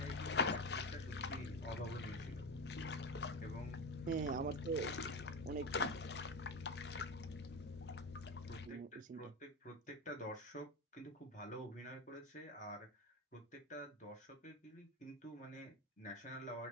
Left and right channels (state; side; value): normal; both; correlation 0.18